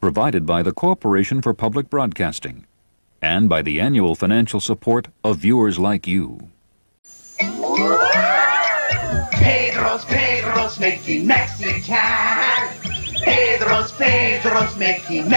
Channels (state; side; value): inverted; both; correlation -1.00